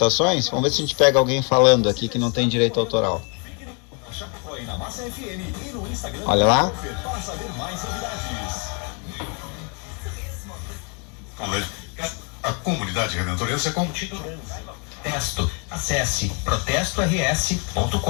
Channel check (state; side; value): quieter; right; 35.9 dB